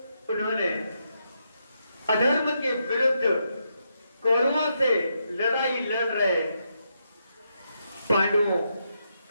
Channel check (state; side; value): inverted; both; correlation -0.81